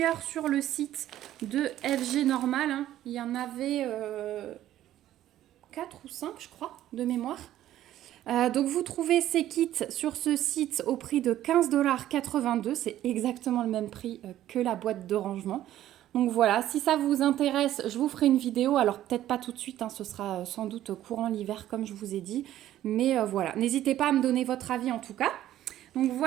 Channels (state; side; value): quieter; left; 12.9 dB